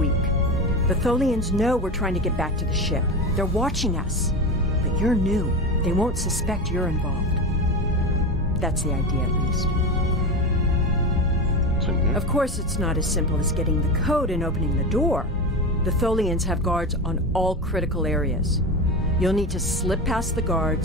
The Tholians know we're trying to get back to the ship. They're watching us. But you're new. They won't suspect you're involved. That's the idea, at least. Of course, it's not as simple as getting the code and opening the door. The Tholians have guards on all critical areas. You'll need to slip past the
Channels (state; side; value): normal; both; correlation 0.22